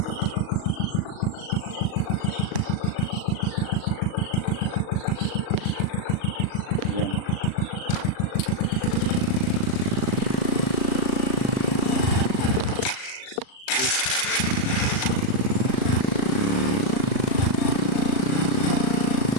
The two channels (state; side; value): late; right; 38 ms